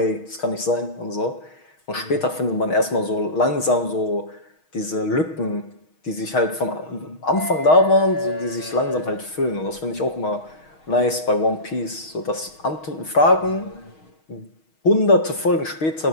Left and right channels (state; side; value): late; right; 6.4 ms